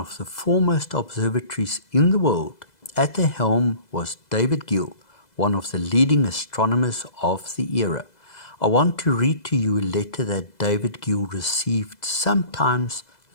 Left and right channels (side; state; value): right; late; 2.0 ms